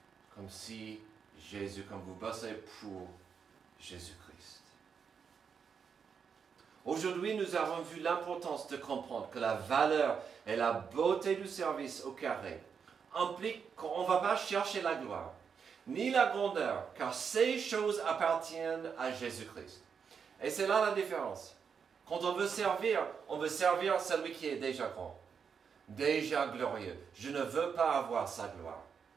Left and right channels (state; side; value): quieter; left; 6.5 dB